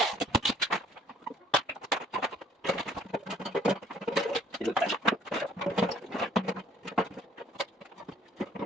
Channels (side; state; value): both; normal; correlation 0.58